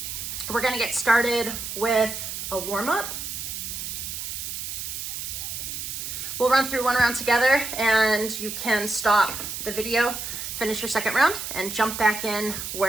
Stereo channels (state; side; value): noise; right; hiss, 6 dB below the sound